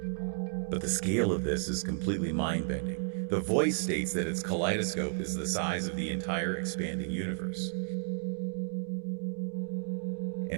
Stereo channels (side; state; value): left; silent; 56 dB below the other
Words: But the scale of this is completely mind-bending. The voice states that its kaleidoscope is the size of the entire expanding universe.